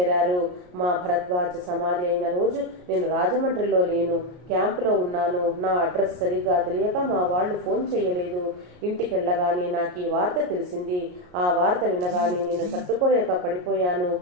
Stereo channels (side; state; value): left; late; 33 ms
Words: మా భరద్వాజ సమాధి అయిన రోజు నేను రాజమండ్రిలో లేను, క్యాంపులో ఉన్నాను. నా అడ్రస్ సరిగ్గా తెలియక మా వాళ్ళు ఫోన్ చేయలేదు. ఇంటికెళ్ళగానే నాకు ఈ వార్త తెలిసింది. ఆ వార్త వినగానే నేను తట్టుకోలేక పడిపోయాను.